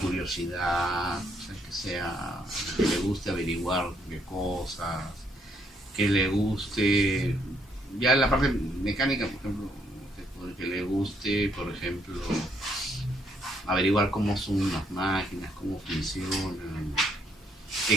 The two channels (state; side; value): normal; both; correlation 0.72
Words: o sea, que le guste averiguar de cosas, que le guste, ya en la parte mecánica, por ejemplo, que le guste, por ejemplo, averiguar cómo son las máquinas, cómo funcionan, qué